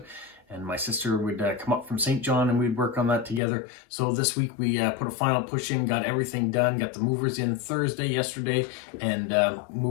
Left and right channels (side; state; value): right; drops out; at 3.4 s